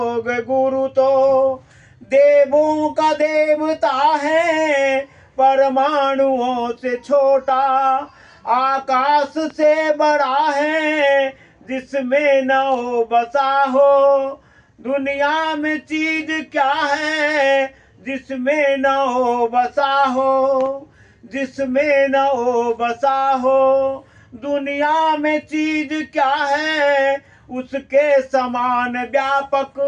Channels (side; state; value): both; identical; correlation 1.00